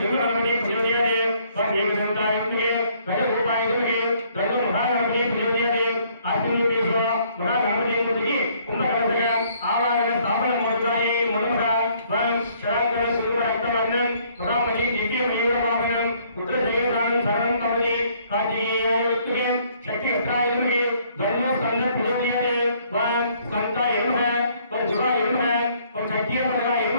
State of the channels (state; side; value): inverted; both; correlation -0.64